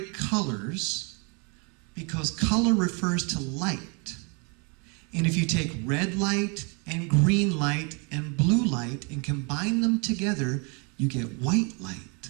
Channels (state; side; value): quieter; left; 33.9 dB